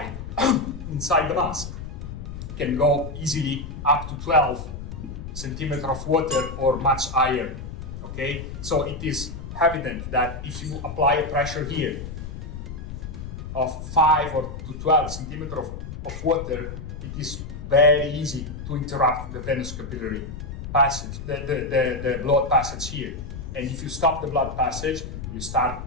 inside the mask, can go easily up to 12 centimeter of water or much higher. Okay, so it is evident that if you apply a pressure here of 5 or to 12 centimeter of water, it is very easy to interrupt the venous capillary passage, the blood passage here. And if you stop the blood passage, you start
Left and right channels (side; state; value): left; noise; rumble, 9 dB below the sound